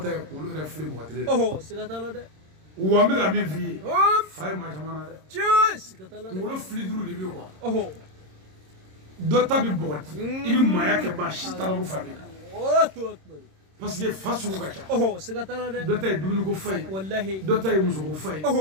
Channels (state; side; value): late; left; 26 ms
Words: tɛ kunkolo yɛrɛ fili mɔgɔ kelen Oh. Sikatala de. wa n bɛ ka min f'i ye Hop. fa ye maa caman na dɛ Cheers. Sikatala de. kunkolo fili duuru de bɛ yen quoi Oh. dɔ ta bɛ bɔgɔti i bɛ maaya kɛ maa si t'a la ko fa b'i la Allahu akbar. parce que fa sugu ka ca Oh. Sikatala de. dɔ ta ye dumuni ko fa ye Wallahi. dɔ ta ye muso ko fa ye